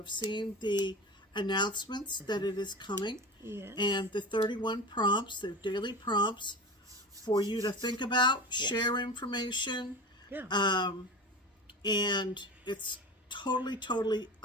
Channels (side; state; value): both; normal; correlation 0.30